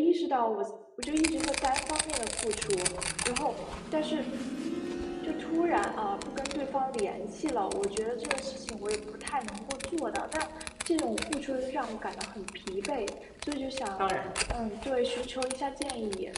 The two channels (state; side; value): identical; both; correlation 1.00